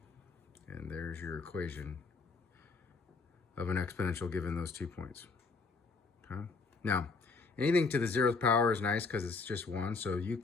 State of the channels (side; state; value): right; quieter; 4.4 dB